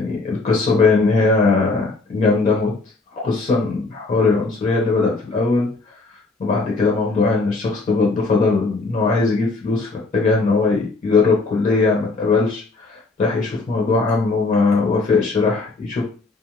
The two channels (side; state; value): right; quieter; 3.6 dB